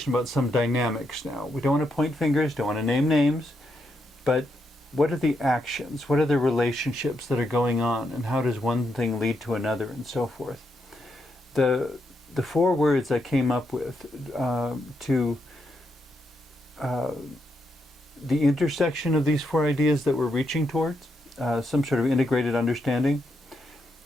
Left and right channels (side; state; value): both; normal; correlation 0.81